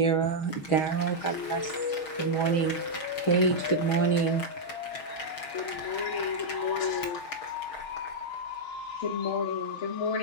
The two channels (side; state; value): right; late; 6.4 ms